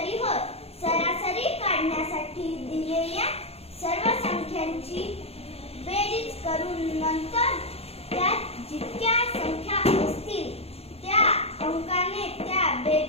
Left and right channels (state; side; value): late; right; 0.29 ms